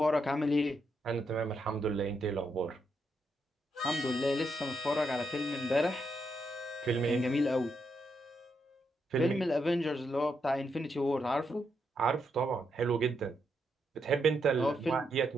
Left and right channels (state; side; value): normal; both; correlation 0.80